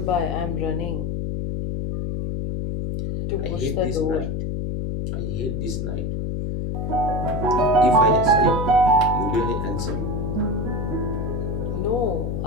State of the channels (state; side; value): noise; left; hum, 2 dB below the sound